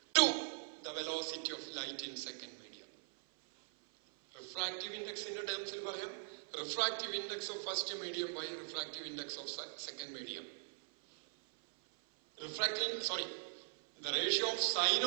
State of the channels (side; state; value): left; silent; 51 dB below the other